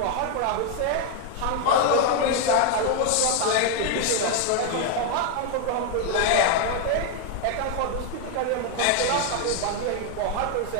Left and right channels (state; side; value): different; both; correlation 0.01